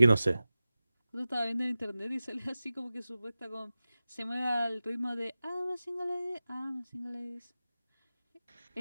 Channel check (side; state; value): both; inverted; correlation -0.95